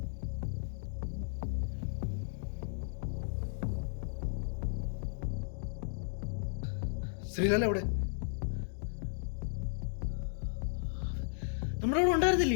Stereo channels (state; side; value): silent; right; digital silence